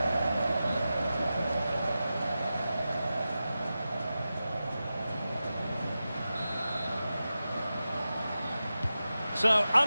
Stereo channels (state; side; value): inverted; both; correlation -0.93